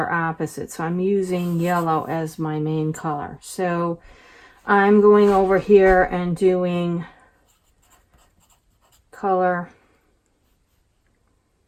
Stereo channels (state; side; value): identical; both; correlation 1.00